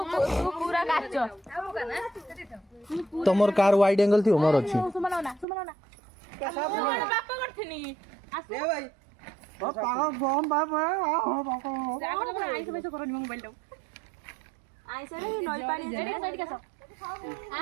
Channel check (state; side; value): drops out; left; at 5.5 s